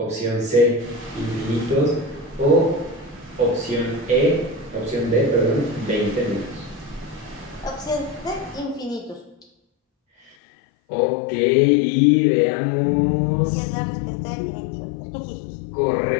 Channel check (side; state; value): right; drops out; at 10.3 s